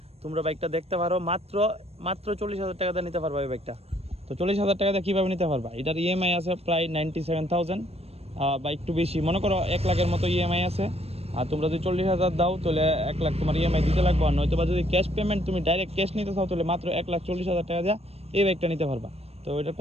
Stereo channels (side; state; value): left; late; 0.29 ms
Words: তোমরা বাইকটা দেখতে পারো, মাত্র 40,000 টাকা দিয়ে নিতে পারবা এই বাইকটা। তো 40,000 টাকা দিয়ে কীভাবে নিতে পারবা? এটার ইএমআই আছে প্রায় 97,000 বা একটু বেশি, মনে করো 1 লাখের মতো ইএমআই আছে। আর তোমরা যদি 40,000 দাও তাহলে 1 লাখ তোমার ইএমআই দিতে লাগবে। আর নয়তো বা যদি ক্যাশ পেমেন্ট তুমি ডাইরেক্ট ক্যাশ নিতে চাও তাহলে মাত্র 1,40,000 টাকা দিয়ে এই বাইকটা নিতে পারবা। তো এটার